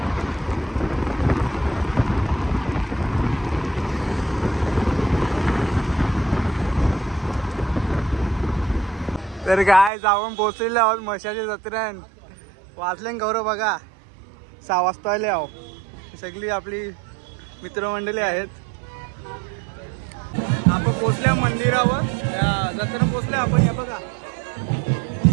तर काय जाऊन पोचलेले आहोत मशाच्या जत्रेन. वाजले गौरव बघा 6 वाजता आले आहो. सगळी आपली मित्रमंडळी आहेत. आपण पोचल्या मंदिरावर, जत्रेला पोचले आपण. हे बघा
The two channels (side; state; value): left; drops out; at 9.9 s